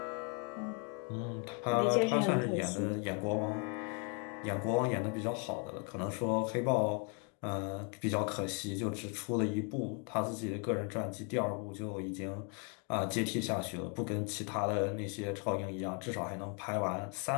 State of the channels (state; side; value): quieter; right; 37.4 dB